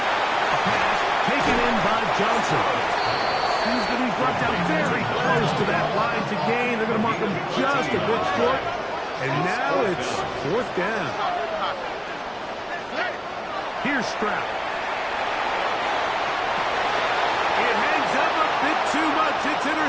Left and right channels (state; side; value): identical; both; correlation 1.00